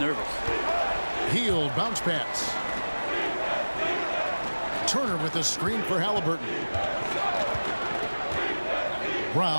Hield, bounce pass. Turner with the screen for Halliburton.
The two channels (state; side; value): inverted; both; correlation -1.00